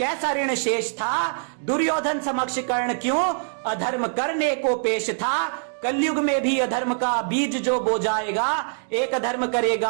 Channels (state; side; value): silent; left; digital silence